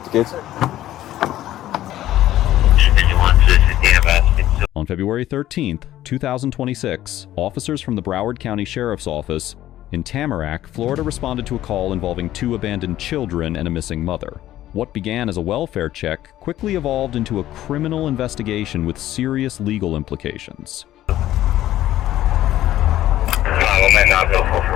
the kids? On On February 13th, 2026, officers from the Broward County Sheriff's Office in Tamarac, Florida responded to a call involving 2 abandoned children and a missing mother. What began as a welfare check quickly evolved into a criminal investigation with serious legal implications.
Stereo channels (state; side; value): quieter; right; 13.6 dB